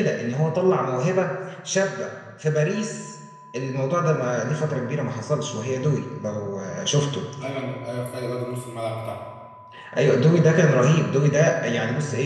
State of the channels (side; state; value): both; identical; correlation 1.00